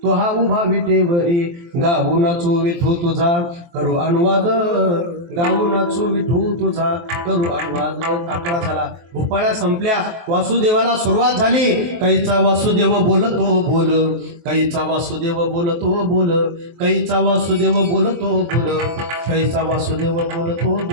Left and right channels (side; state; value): left; late; 23 ms